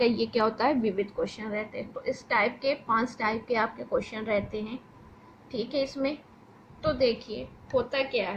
ये क्या होता है, विविध क्वेश्चन रहते हैं। तो इस टाइप के 5 टाइप के आपके क्वेश्चन रहते हैं, ठीक है। इसमें तो देखिए होता क्या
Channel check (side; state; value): both; identical; correlation 1.00